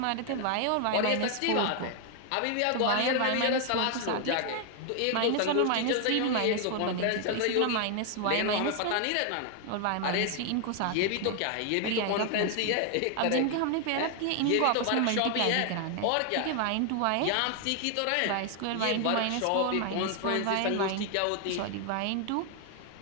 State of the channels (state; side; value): different; both; correlation 0.00